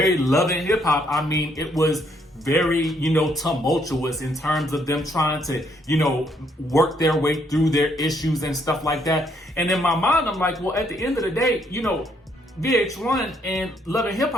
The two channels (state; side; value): normal; both; correlation 0.71